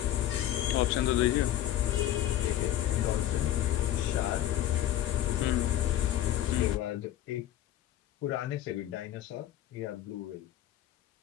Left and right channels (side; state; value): right; quieter; 12.8 dB